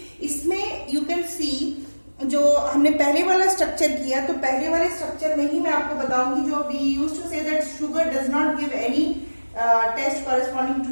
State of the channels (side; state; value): both; inverted; correlation -1.00